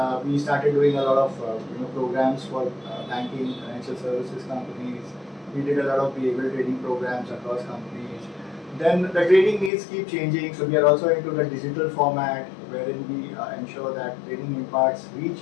we started doing a lot of programs for banking, financial services companies. We did a lot of behavioral training programs across companies. Then the training needs keep changing, so we are also into the digital format, wherein we ensure that training imparts reach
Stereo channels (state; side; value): drops out; right; at 9.7 s